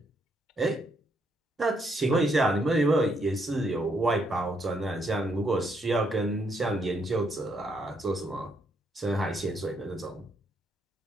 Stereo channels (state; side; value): normal; both; correlation 0.74